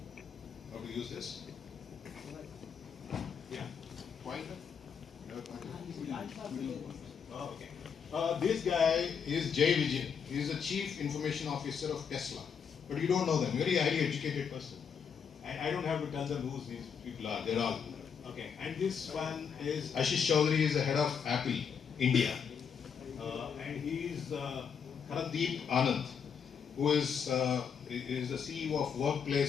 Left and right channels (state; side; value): quieter; right; 6.9 dB